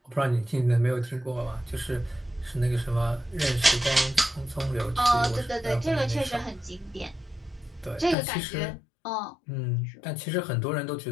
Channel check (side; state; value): right; drops out; at 8.2 s